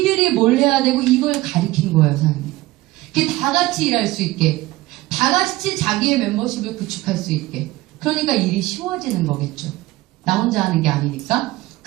뭘 해야 되고 이걸 가리킨 거예요, 사장님. 그게 다 같이 일할 수 있게, 다 같이 자기의 멤버십을 구축할 수 있게. 그러니까 일이 쉬워지는 거겠죠. 나 혼자 하는 게 아니니까.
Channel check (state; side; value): quieter; left; 18.4 dB